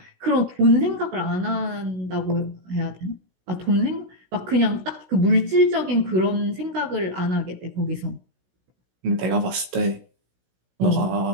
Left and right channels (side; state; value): left; late; 16 ms